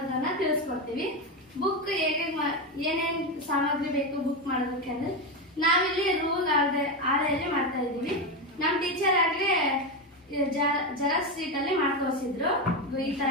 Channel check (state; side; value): normal; both; correlation 0.12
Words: ತಿಳಿಸ್ಕೊಡ್ತೀವಿ. ಬುಕ್ ಹೇಗೆ ಏನೇನು ಸಾಮಗ್ರಿ ಬೇಕು ಬುಕ್ ಮಾಡೋದಕ್ಕೆ ಅಂದ್ರೆ ನಾವಿಲ್ಲಿ ರೂಲ್ ಆಳೆಯಲ್ಲಿ ಮಾಡ್ತಾ ಇದ್ದೀವಿ. ನಮ್ಮ ಟೀಚರ್ ಆಗ್ಲೇ ಜೆರಾಕ್ಸ್ ಶೀಟ್ ಅಲ್ಲಿ ಮಾಡ್ತೋರಿಸಿದ್ರು. ಈ ತರ